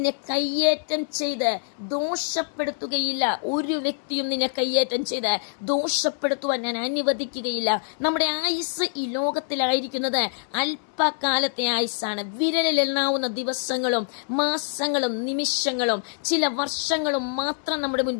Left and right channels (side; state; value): right; silent; 62 dB below the other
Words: കയ്യേറ്റം ചെയ്ത് ദോഷപ്പെടുത്തുകയില്ല. ഒരു വ്യക്തിയും നിന്നെ കയ്യേറ്റം ചെയ്ത് ദോഷപ്പെടുത്തുവാൻ ഞാൻ അനുവദിക്കുകയില്ല. നമ്മുടെ ആയുസ് ഈ ലോകത്തിലായിരിക്കുന്നത് അല്പകാലത്തെ ആയുസ്സാണ്. വിരലിലെണ്ണാവുന്ന ദിവസങ്ങളും മാസങ്ങളും നിമിഷങ്ങളും ചില വർഷങ്ങളും മാത്രം നമ്മുടെ